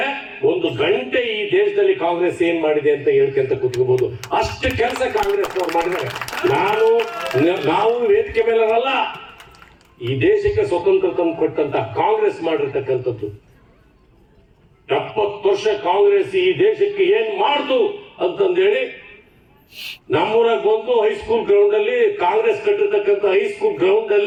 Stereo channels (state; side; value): identical; both; correlation 1.00